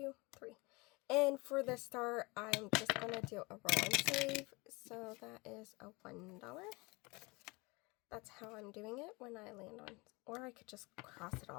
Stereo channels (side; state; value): right; quieter; 25.7 dB